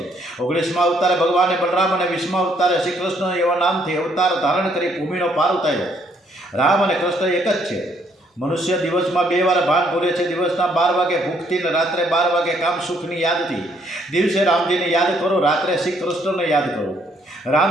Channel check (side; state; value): both; normal; correlation 0.68